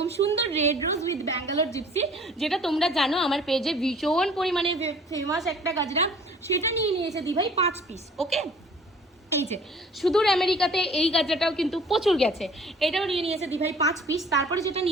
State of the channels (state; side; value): normal; both; correlation 0.51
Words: সুন্দর red rose with Bangalore gypsy, যেটা তোমরা জানো আমার পেজে ভীষণ পরিমাণে ফেমাস একটা গাজরা। সেটা নিয়ে নিয়েছে দিভাই 5 পিস। ওকে, এই যে সুদূর আমেরিকাতে এই গাজরাটাও কিন্তু প্রচুর গেছে, এটাও নিয়ে নিয়েছে দিভাই 5 পিস। তারপরে যেটা